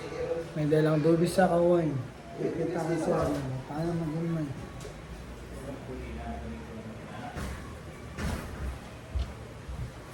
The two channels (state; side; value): identical; both; correlation 1.00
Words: May dalang dubis sa kawain. Kita ko sa ano, paano mag-umay.